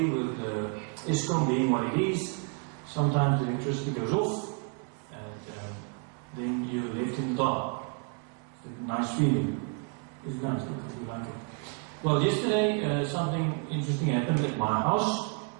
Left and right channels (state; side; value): quieter; left; 37.2 dB